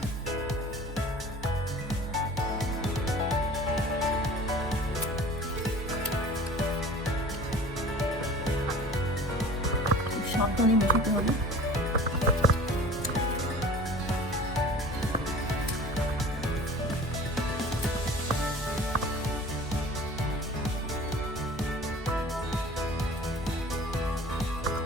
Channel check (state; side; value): normal; both; correlation 0.43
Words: সাবধানে মেশাতে হবে।